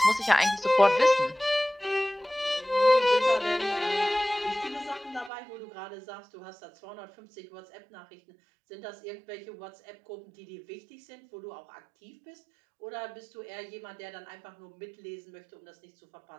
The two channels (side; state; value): left; drops out; at 5.3 s